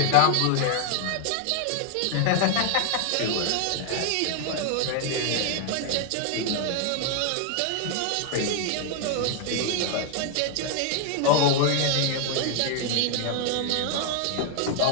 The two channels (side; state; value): both; different; correlation 0.00